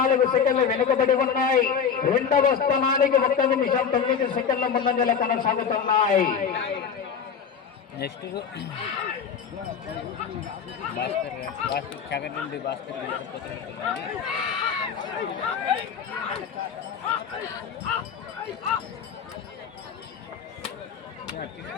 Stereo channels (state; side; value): quieter; right; 7.0 dB